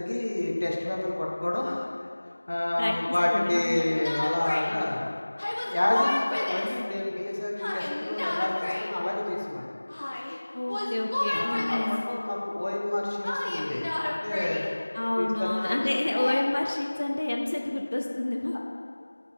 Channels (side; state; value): both; inverted; correlation -1.00